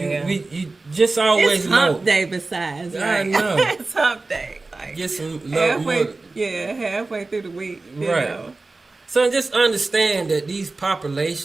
you just always It's know. hump day besides, I right? know. It's hump day. Like, Get some love. halfway through the week. You Right. know. So just understand that these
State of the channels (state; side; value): quieter; left; 3.4 dB